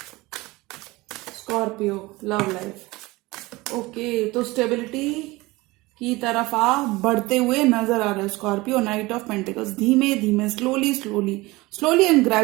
Scorpio love life, okay. तो स्टेबिलिटी की तरफ आप बढ़ते हुए नजर आ रहे हो स्कॉर्पियो। नाइट ऑफ पेंटिकल्स, धीमे धीमे slowly slowly slowly and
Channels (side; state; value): left; quieter; 21.4 dB